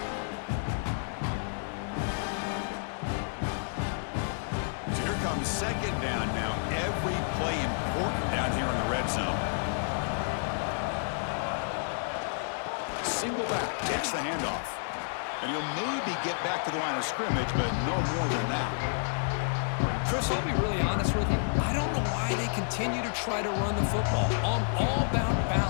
So here comes second down now. Every play important down here in the red zone. Single back takes the handoff. And he'll maybe get back to the line of scrimmage, but no more than that. Chris, I'll be really honest with you. I don't know why they continue to try to run the football. I'm all about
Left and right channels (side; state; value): right; silent; digital silence